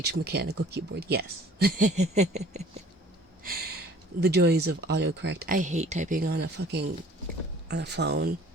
mechanical keyboard. Yes. The joys of autocorrect. I hate typing on a phone.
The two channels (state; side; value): normal; both; correlation 0.51